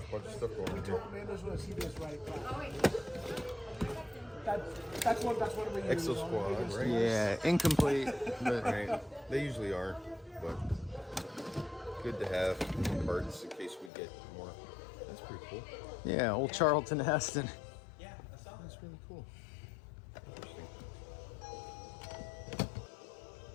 of stuff going on here. Man, just want to see this right across. Oh, wait. That's one of the Exo Squad, right? Yeah, incomplete. But Right. They usually are, but good to have cards in case we get more. That's pretty cool. yeah, old Charlton Heston. That's really cool. Interesting.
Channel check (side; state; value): right; drops out; at 13.9 s